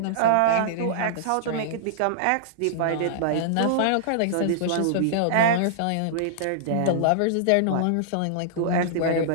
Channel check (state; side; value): different; both; correlation -0.01